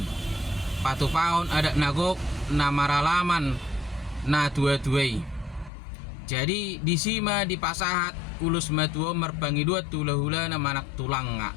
Patupaon ada nagok na maralaman na tua-tuai. Jadi disima dipasahat ulus matua merbangi dua tula-hula na manak tulang nga.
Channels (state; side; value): drops out; right; at 5.7 s